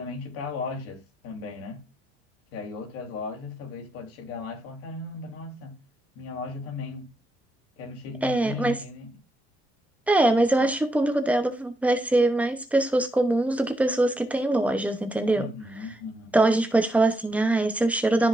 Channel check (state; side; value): normal; both; correlation 0.82